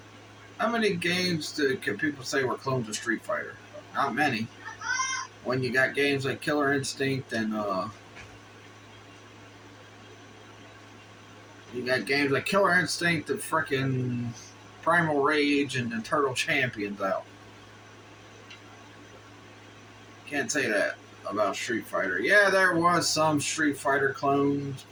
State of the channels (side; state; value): both; identical; correlation 1.00